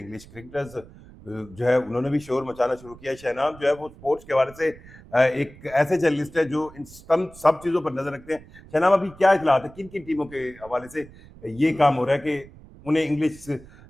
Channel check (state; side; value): noise; right; rumble, 21 dB below the sound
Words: کرکٹرز جو ہے انہوں نے بھی شور مچانا شروع کیا ہے. شہنام جو ہے وہ سپورٹس کے حوالے سے ایک ایسے جرنلسٹ ہے جو ان سب چیزوں پر نظر رکھتے ہیں. شہنام, ابھی کیا اطلاعات ہے, کن کن ٹیموں کے حوالے سے یہ کام ہو رہا ہے کہ انہیں انگلش